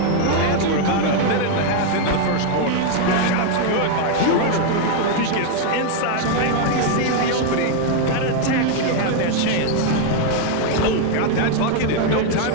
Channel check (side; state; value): both; different; correlation 0.00